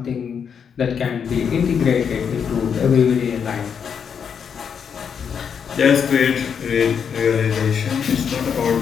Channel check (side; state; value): right; quieter; 7.1 dB